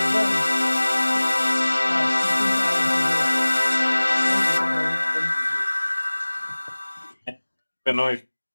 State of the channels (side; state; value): both; inverted; correlation -1.00